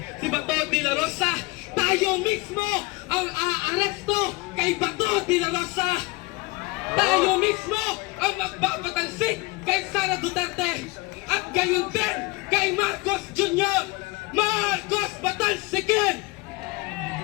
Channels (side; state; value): right; quieter; 24.3 dB